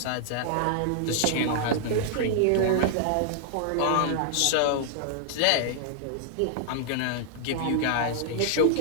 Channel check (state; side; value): different; both; correlation -0.01